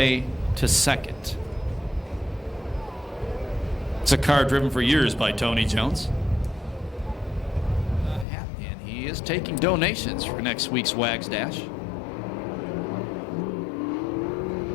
to second. It's a car driven for years by Tony Jones. And he is taking donations for next week's Wags Dash.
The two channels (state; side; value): drops out; right; at 8.2 s